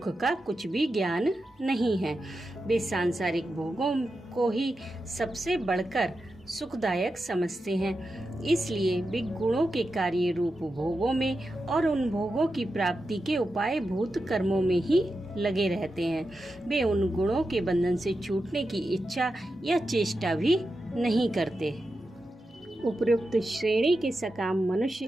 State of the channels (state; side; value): normal; both; correlation 0.89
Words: का कुछ भी ज्ञान नहीं है। वे सांसारिक भोगों को ही सबसे बढ़कर सुखदायक समझते हैं। इसलिए वे गुणों के कार्य रूप भोगों में और उन भोगों की प्राप्ति के उपाय भूत कर्मों में ही लगे रहते हैं। वे उन गुणों के बंधन से छूटने की इच्छा या चेष्टा भी नहीं करते। उपयुक्त श्रेणी के सकाम